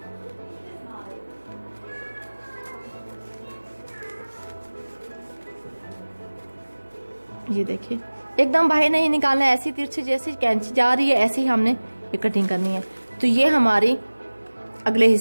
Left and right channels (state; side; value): inverted; both; correlation -1.00